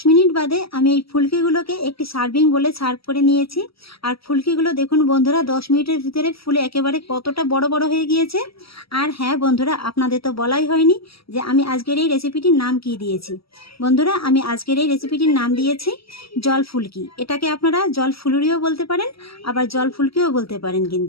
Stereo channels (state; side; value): late; right; 0.76 ms